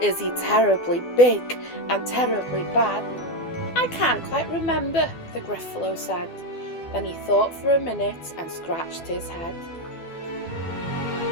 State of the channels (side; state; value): right; late; 12 ms